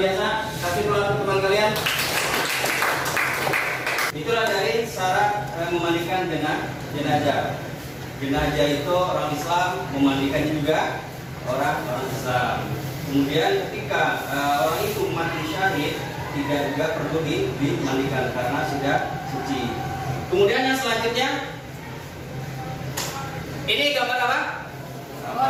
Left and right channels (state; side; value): identical; both; correlation 1.00